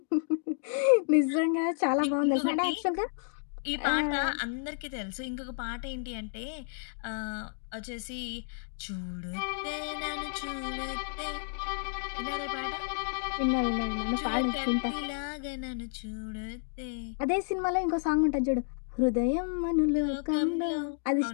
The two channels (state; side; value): silent; right; digital silence